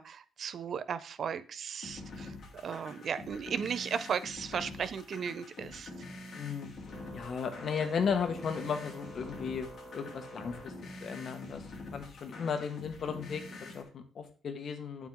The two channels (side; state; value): both; normal; correlation 0.71